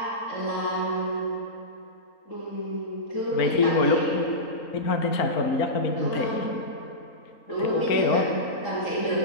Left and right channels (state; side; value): late; right; 3.8 ms